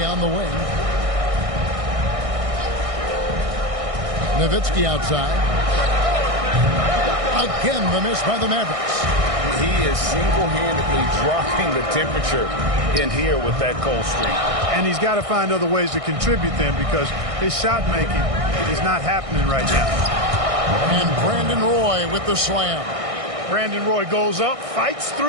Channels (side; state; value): left; late; 1.6 ms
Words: on the wing. Nowitzki outside. Again, the miss by the Mavericks. He is single-handedly dropping the temperature in here with that cold streak. And he's got to find other ways to contribute then, because his shot making is not happening right now. And Brandon Roy with the slam. Brandon Roy goes up, fights